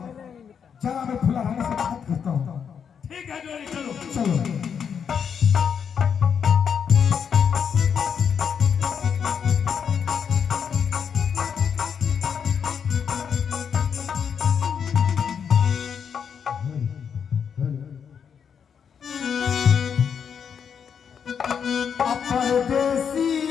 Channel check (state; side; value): quieter; right; 7.2 dB